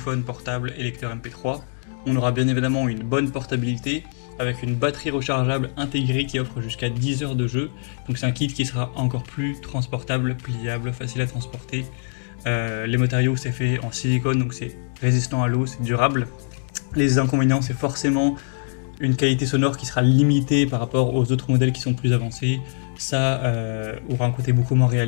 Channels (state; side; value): silent; right; digital silence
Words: portable et lecteur MP3. On aura bien évidemment une bonne portabilité avec une batterie rechargeable intégrée qui offre jusqu'à 10 heures de jeu. Donc c'est un kit qui sera encore plus transportable, pliable, facile à transporter. Les matériaux, c'est fait en silicone, donc c'est résistant à l'eau, c'est durable. Les inconvénients, c'est forcément une qualité sonore qui sera limitée par rapport aux autres modèles qui sont plus avancés. Ça aura un côté beaucoup moins